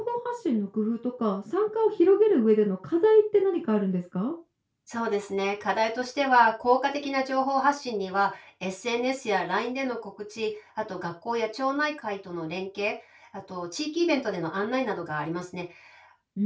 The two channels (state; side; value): identical; both; correlation 1.00